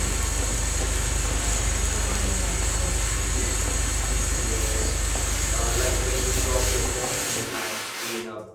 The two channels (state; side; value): identical; both; correlation 1.00